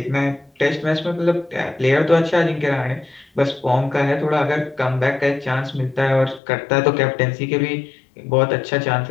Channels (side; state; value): right; drops out; at 6.4 s